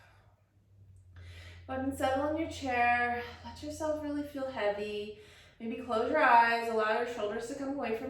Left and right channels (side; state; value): both; identical; correlation 1.00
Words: Go ahead and settle in your chair. Let yourself really feel heavy. Maybe close your eyes, allow your shoulders to come away